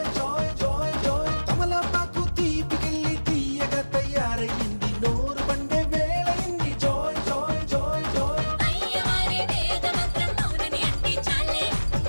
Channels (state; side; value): inverted; both; correlation -1.00